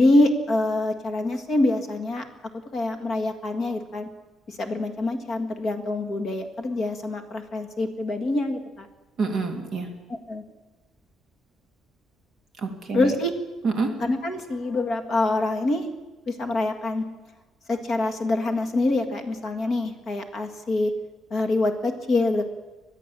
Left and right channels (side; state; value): both; normal; correlation 0.86